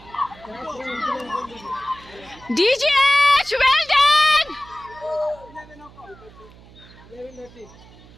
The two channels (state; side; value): noise; right; hum, 22 dB below the sound